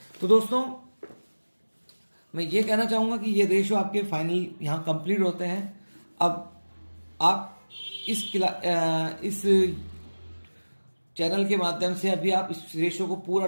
तो दोस्तों मैं ये कहना चाहूँगा कि ये रेशियो आपके फाइनल यहाँ कंप्लीट होते हैं। अब आप इस चैनल के माध्यम से अभी आप इस रेशियो को पूरा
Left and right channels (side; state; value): both; inverted; correlation -1.00